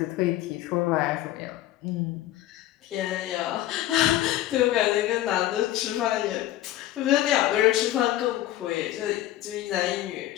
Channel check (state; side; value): quieter; right; 14.2 dB